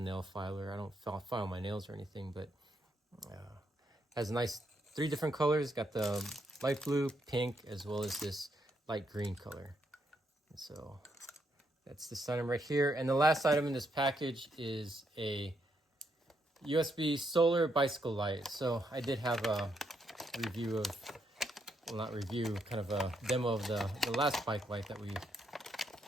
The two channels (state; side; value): normal; both; correlation 0.77